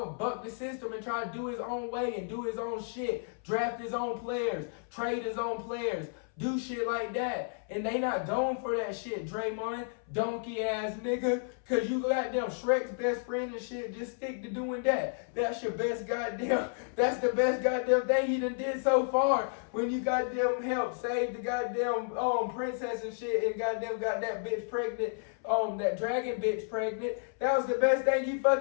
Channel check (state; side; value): silent; right; 57 dB below the other